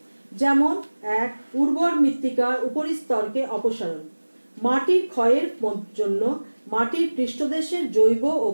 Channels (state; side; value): inverted; both; correlation -1.00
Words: যেমন 1. উর্বর মৃত্তিকার উপরিস্তরকে অপসারণ। মাটির ক্ষয়ের জন্য মাটির পৃষ্ঠদেশের জৈব ও